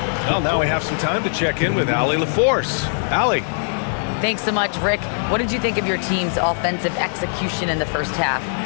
Well, now we have some time to check in with Allie LaForce. Allie. Thanks so much, Rick. What did you think of your team's offensive execution in the first half?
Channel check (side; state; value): right; silent; digital silence